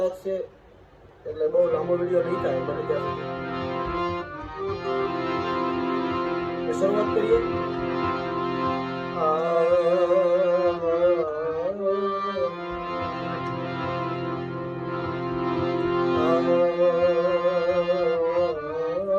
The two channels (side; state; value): both; identical; correlation 1.00